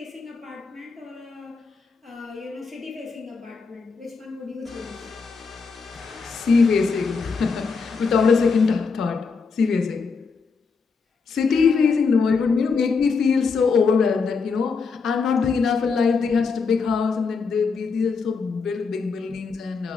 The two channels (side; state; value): right; quieter; 5.0 dB